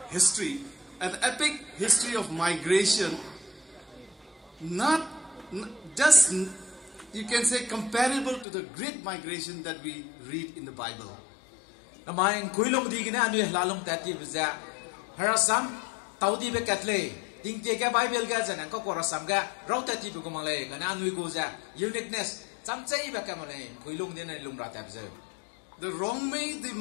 history of migration. Not just, you can say, comparable to the great migration that we read in the Bible. Namaing kuilong di gina anu lalong tati bza harasam taudi be katle ding te ka Bible ga janang ko korasam ga raw tati bu kumale kana anu go ja uniqueness chamchai ba kamale kuilong din na lumra ta bza. The Rongmei, they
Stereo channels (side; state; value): right; drops out; at 8.5 s